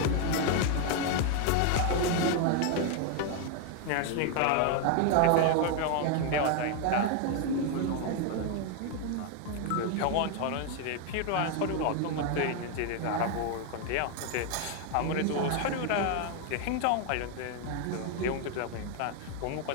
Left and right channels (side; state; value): both; different; correlation 0.01